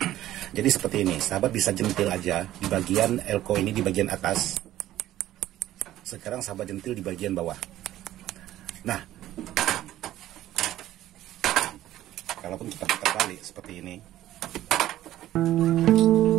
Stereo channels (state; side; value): quieter; left; 13.8 dB